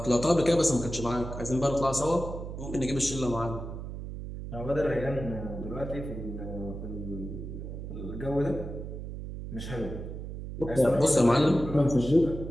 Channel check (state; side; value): noise; right; hum, 8 dB below the sound